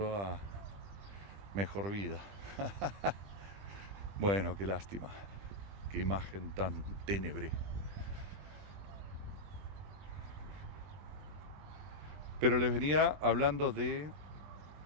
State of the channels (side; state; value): left; late; 20 ms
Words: a mejor vida. Bueno, qué lástima, qué imagen tan ténebre. Pero les venía hablando de...